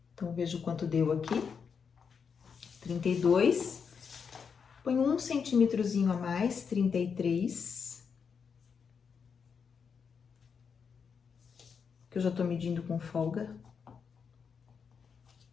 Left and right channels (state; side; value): quieter; right; 6.3 dB